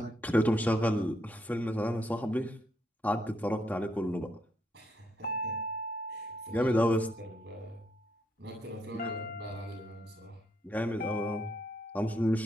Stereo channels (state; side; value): normal; both; correlation 0.76